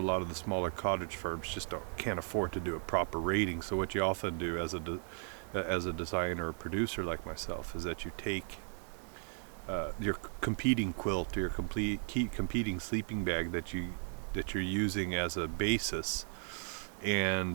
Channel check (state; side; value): silent; left; 54 dB below the other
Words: of the smaller cottage firms just can't afford to do a proper rating. So what you often do as a designer or producer like myself is that you take your competing quilt or your competing sleeping bag that you're using as a basis,